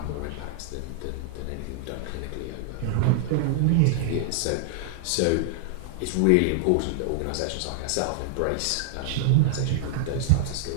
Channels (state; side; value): different; both; correlation -0.01